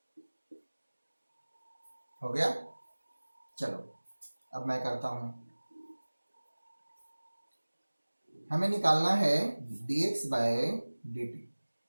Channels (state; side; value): inverted; both; correlation -1.00